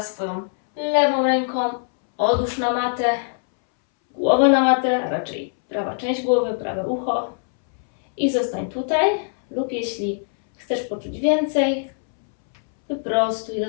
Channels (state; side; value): silent; right; 64 dB below the other